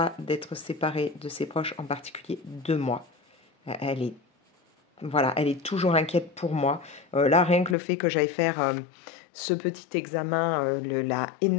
d'être séparée de ses proches, en particulier de moi. Elle est, voilà, elle est toujours inquiète pour moi. Là, rien que le fait que j'aille faire ce petit examen l'a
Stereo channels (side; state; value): right; drops out; at 7.8 s